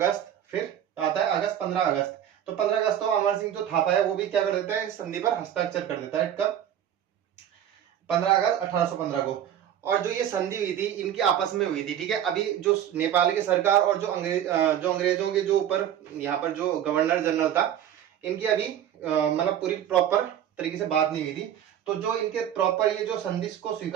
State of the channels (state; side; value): quieter; left; 10.3 dB